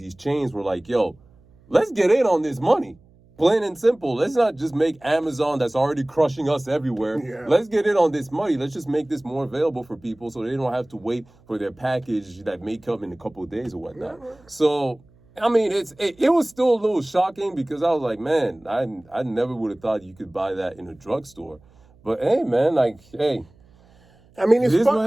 chains were like, yo, let's get in on this money. Plain and simple. Let's not just make Amazon that's already crushing us everywhere. Yeah. Let's get in on this money. Let's just make this more available for people so they don't have to wait for their package that may come in a couple of days or whatnot. Yeah. So, it was still a little shocking because I was like, man, I never would have thought you could buy that in a drugstore. But hey, man, it's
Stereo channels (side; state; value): right; noise; hum, 29 dB below the sound